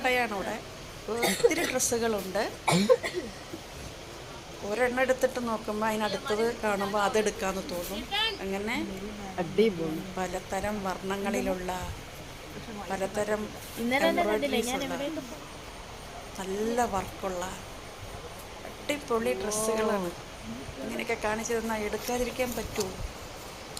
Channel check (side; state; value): both; identical; correlation 1.00